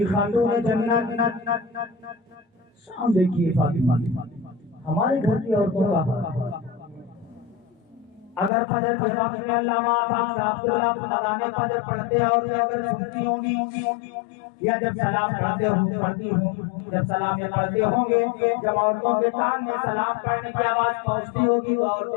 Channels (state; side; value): drops out; right; at 8.5 s